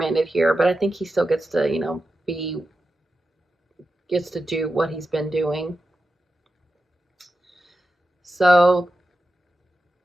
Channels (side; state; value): both; normal; correlation 0.90